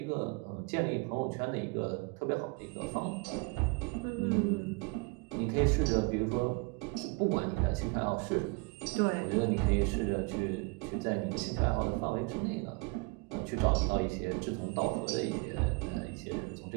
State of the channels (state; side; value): quieter; left; 28.5 dB